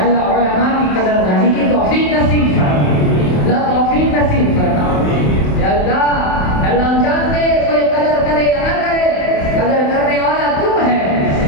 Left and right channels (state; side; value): late; right; 27 ms